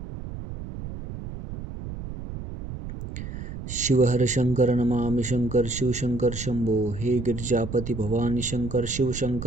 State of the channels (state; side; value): noise; right; rumble, 9 dB below the sound